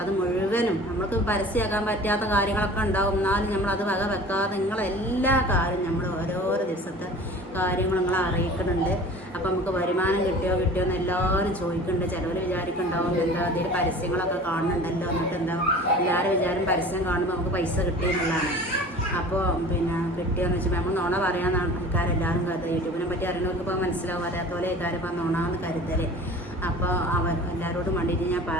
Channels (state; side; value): normal; both; correlation 0.42